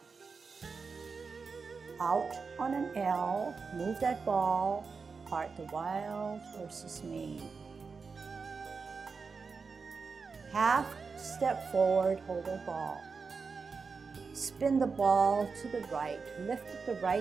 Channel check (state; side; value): quieter; left; 4.9 dB